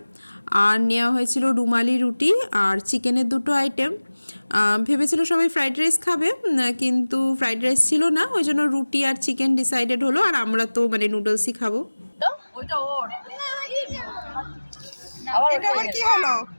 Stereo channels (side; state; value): both; inverted; correlation -1.00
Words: আর নেওয়া হয়েছিল রুমালি রুটি আর চিকেনের দুটো আইটেম। ভেবেছিল সবাই ফ্রাইড রাইস খাবে, কিন্তু ফ্রাইড রাইস ছিল না, ওই জন্য রুটি আর চিকেন ডিসাইডেড হলো। আর আমরা তো মানে নুডলসই খাবো। ওইটা ওর এটা আবার কি হলো?